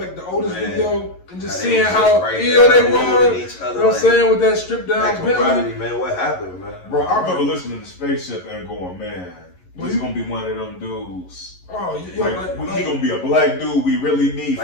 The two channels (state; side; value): late; right; 11 ms